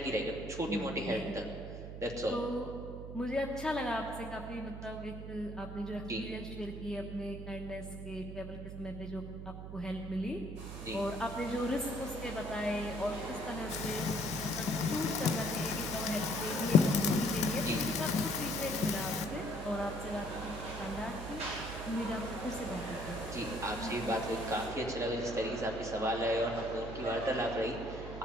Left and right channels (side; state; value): right; noise; hum, 9 dB below the sound